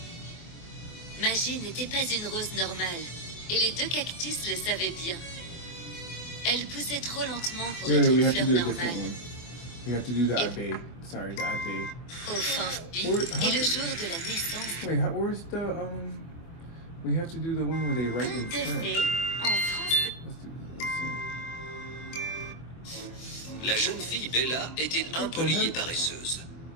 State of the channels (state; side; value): late; right; 24 ms